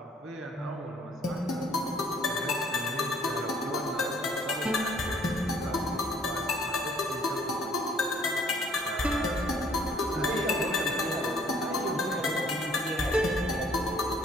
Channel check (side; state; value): both; normal; correlation 0.60